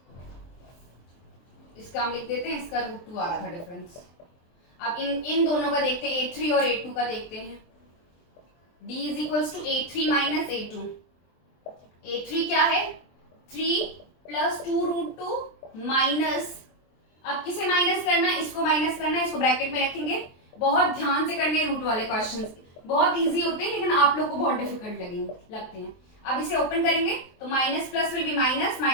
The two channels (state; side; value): late; right; 23 ms